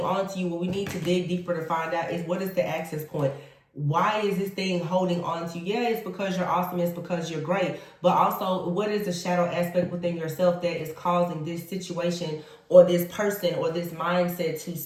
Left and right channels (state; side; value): identical; both; correlation 1.00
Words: to you, what we need to dig deeper to find out is, what is the access point? Why is this thing holding on to you? Yeah, it's because you're awesome. It's because you're great. But also, what is the shadow aspect within yourself that is causing this situation or this person or this mindset to